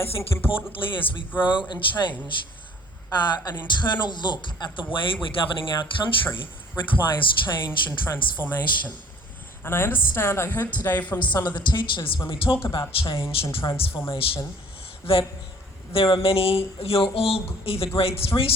I think importantly as we grow and change, an internal look at the way we're governing our country requires change and transformation. And I understand, I heard today from some of the teachers when we talk about change and transformation, that there are many, you're all either grade 3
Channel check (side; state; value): both; normal; correlation 0.52